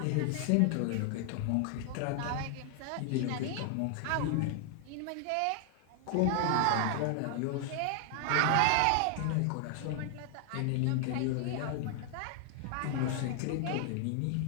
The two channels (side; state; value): both; different; correlation 0.00